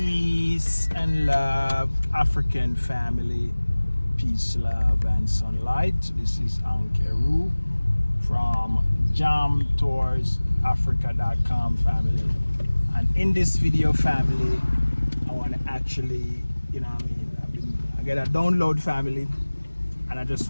and love, African family. Peace, love, and sunlight. This is Ankeru from jamtoursafrica.com family. And in this video, family, I want to actually, I get a download family, and I just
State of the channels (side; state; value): both; inverted; correlation -1.00